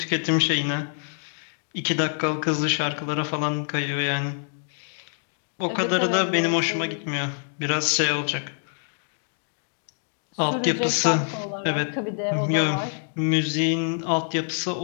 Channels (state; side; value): silent; right; 61 dB below the other